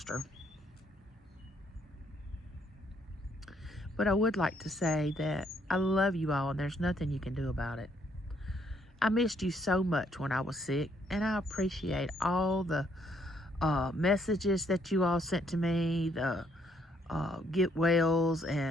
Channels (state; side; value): normal; both; correlation 0.69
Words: But I would like to say that I love you all, and there's nothing you can do about it. I missed you so much when I was sick, and I appreciate all the messages that you all sent to me, the get wells,